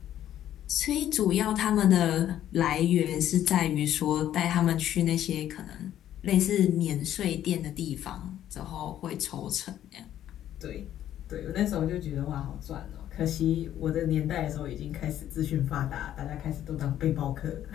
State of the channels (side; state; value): right; quieter; 11.6 dB